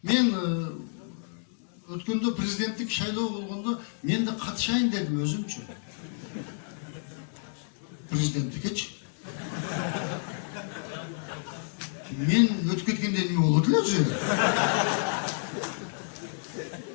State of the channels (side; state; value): right; silent; digital silence